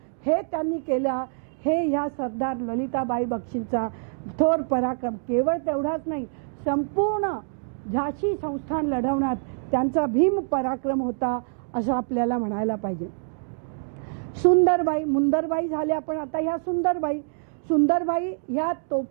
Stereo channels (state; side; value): silent; left; digital silence